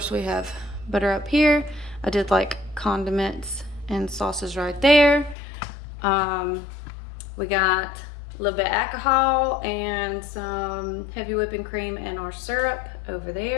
we have butter up here. I did like condiments and sauces right there. We got a little bit of alcohol and some heavy whipping cream and our syrup over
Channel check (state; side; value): drops out; right; at 5.4 s